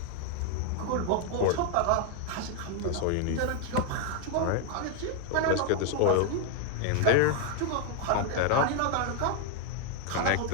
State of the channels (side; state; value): both; different; correlation 0.00